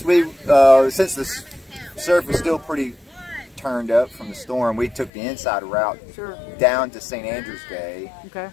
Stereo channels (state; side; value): drops out; right; at 5.1 s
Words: since the surf was still pretty turned up from the storm, we took the inside route down to St. Andrew's Bay,